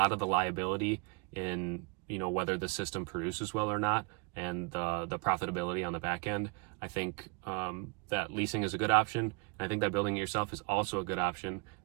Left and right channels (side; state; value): left; quieter; 32.4 dB